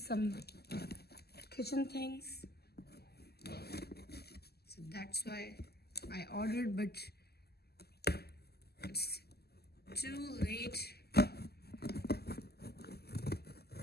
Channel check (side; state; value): right; late; 0.46 ms